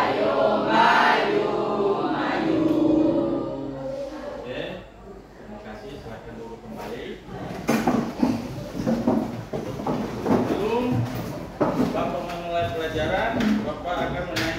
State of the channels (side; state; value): both; identical; correlation 1.00